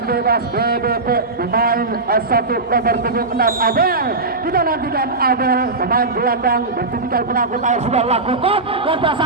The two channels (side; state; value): left; quieter; 3.5 dB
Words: bebas BBP pemain satu nomor 76 Abel. Kita nantikan Abel, pemain gelandang bertipikal penakut air sudah lakukan dan